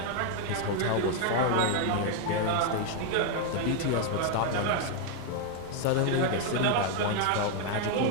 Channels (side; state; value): both; different; correlation 0.01